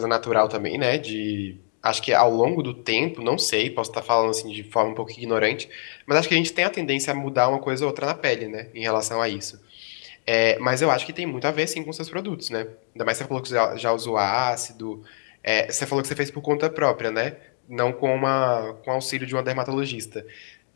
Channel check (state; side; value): silent; right; digital silence